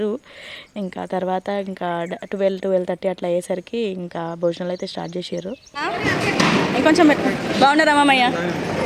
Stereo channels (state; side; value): identical; both; correlation 1.00